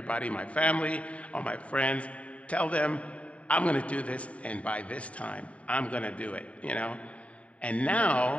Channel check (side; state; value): right; late; 0.066 ms